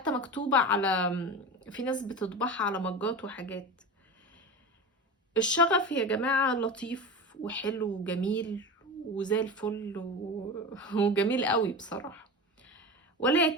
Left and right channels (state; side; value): normal; both; correlation 0.27